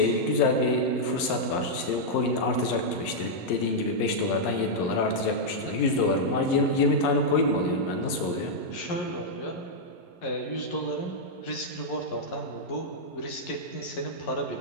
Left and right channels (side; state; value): right; late; 11 ms